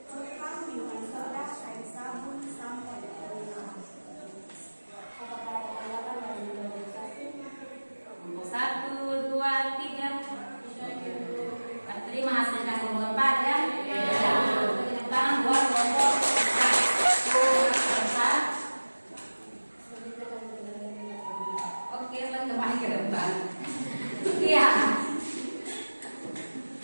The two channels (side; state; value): both; inverted; correlation -1.00